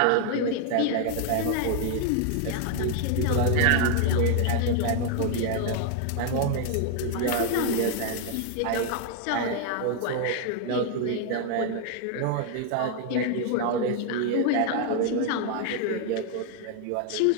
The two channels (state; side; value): different; both; correlation 0.00